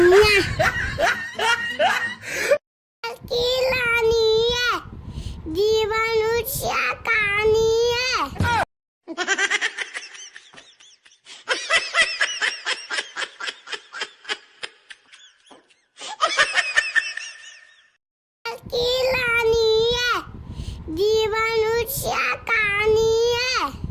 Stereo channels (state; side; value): identical; both; correlation 1.00